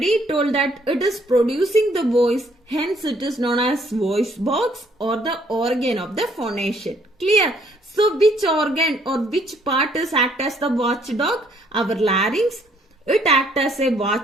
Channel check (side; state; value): both; normal; correlation 0.66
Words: told that it is producing the voice, hence it is known as voice box or the organ of the phonation. Clear? So which organ or which part is act as the watchdog? Our larynx. It acts as a